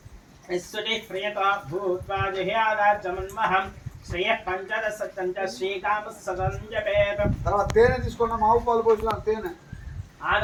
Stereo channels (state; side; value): identical; both; correlation 1.00